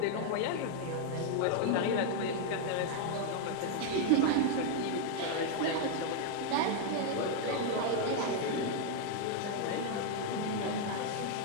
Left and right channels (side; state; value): both; different; correlation 0.00